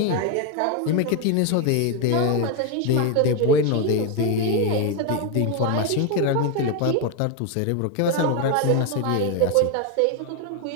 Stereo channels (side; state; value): both; different; correlation 0.02